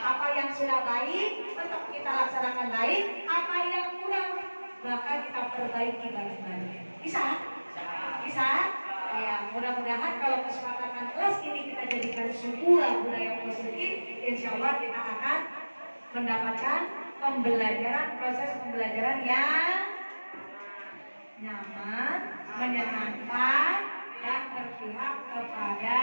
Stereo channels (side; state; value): both; inverted; correlation -1.00